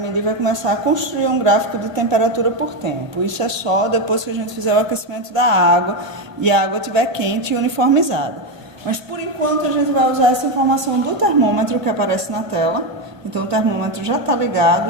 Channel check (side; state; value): left; late; 1.1 ms